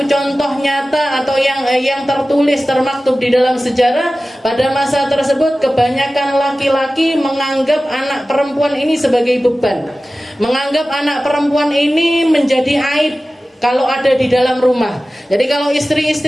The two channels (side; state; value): both; normal; correlation 0.96